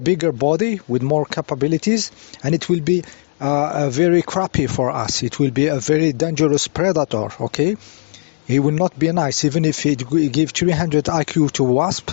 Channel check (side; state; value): right; silent; digital silence